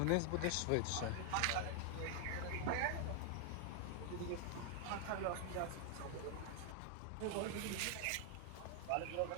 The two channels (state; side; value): different; both; correlation 0.00